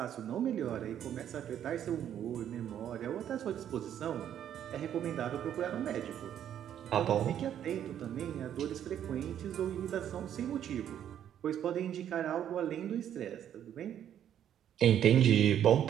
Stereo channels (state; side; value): quieter; left; 10.1 dB